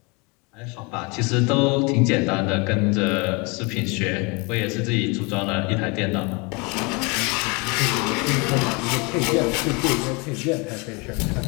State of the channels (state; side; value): quieter; right; 29.1 dB